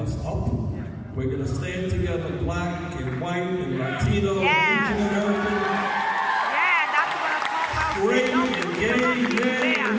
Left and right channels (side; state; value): both; identical; correlation 1.00